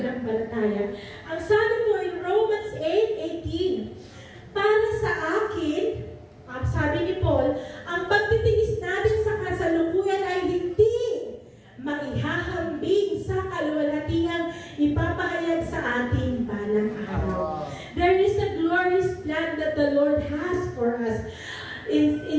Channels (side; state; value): both; identical; correlation 1.00